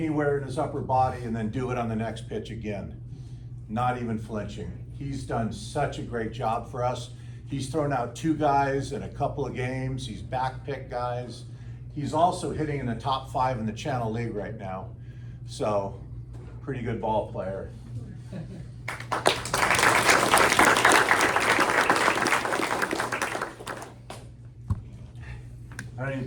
in his upper body and then do it on the next pitch again, not even flinching. He's done such a great job for us. He's thrown out 2 guys in a couple of games. He's backpicked guys. He's also hitting in the top 5 in the Channel League right now. So, pretty good ball player. I don't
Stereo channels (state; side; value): identical; both; correlation 1.00